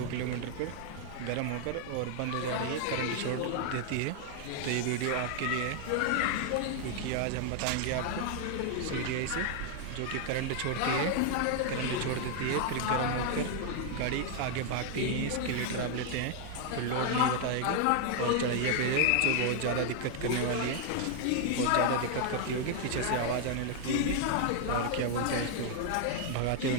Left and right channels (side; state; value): both; different; correlation 0.00